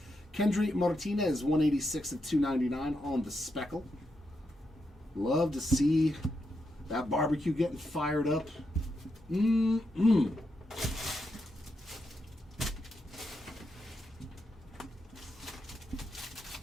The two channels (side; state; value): both; normal; correlation 0.83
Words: Kendry Martinez, 186 of 299 on the speckle. Love to see that barbecue getting fired up.